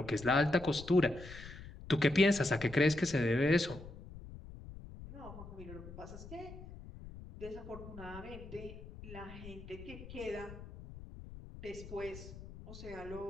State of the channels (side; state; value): left; noise; rumble, 14 dB below the sound